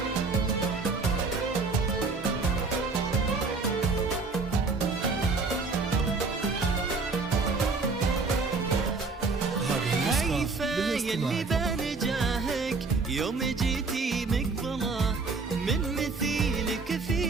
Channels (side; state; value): left; quieter; 4.1 dB